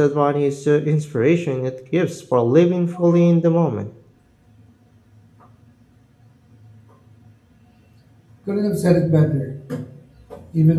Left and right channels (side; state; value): both; identical; correlation 1.00